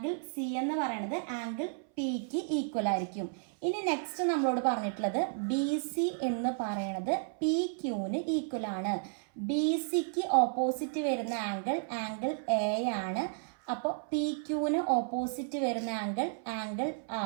സി എന്ന് പറയുന്നത് ആംഗിൾ പിക്ക് ഈക്വൽ ആയിരിക്കും. ഇനി നെക്സ്റ്റ് നമ്മളോട് പറഞ്ഞിട്ടുള്ളത് ബി സി എന്ന് പറയുന്നത് പി ക്യൂന് ഈക്വൽ ആണ്. ബി സിക്ക് ഓപ്പോസിറ്റ് വരുന്ന ആംഗിൾ എ ആണ്. അപ്പോൾ പി ക്യൂന് ഓപ്പോസിറ്റ് വരുന്ന ആംഗിൾ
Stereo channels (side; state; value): left; silent; 56 dB below the other